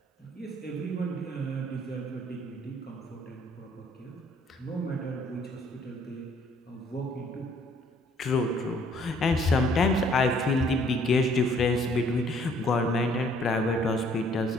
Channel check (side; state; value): both; normal; correlation 0.61